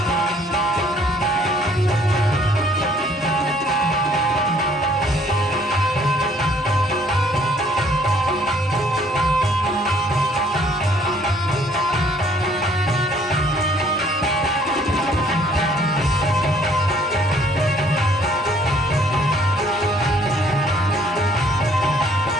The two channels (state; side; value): normal; both; correlation 0.61